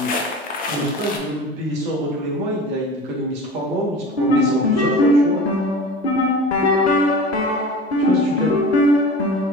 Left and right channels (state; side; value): normal; both; correlation 0.36